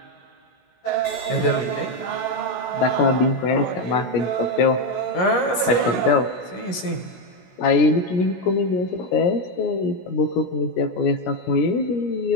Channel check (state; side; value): late; right; 16 ms